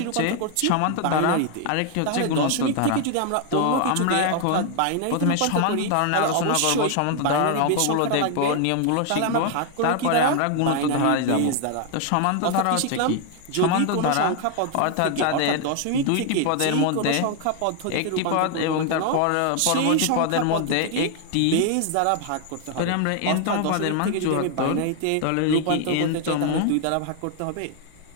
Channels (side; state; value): both; different; correlation 0.00